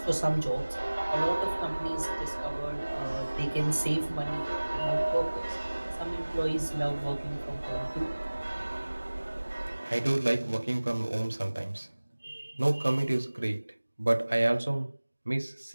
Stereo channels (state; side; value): inverted; both; correlation -1.00